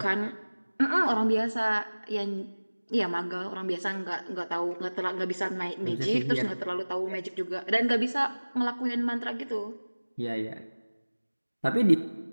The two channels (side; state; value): both; inverted; correlation -1.00